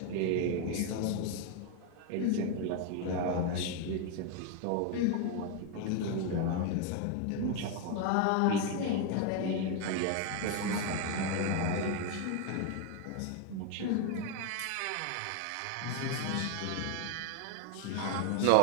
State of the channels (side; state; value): both; different; correlation 0.01